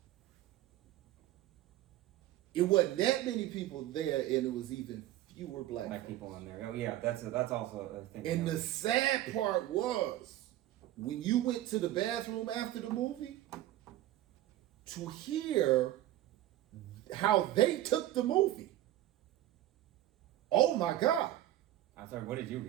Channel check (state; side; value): quieter; left; 14.1 dB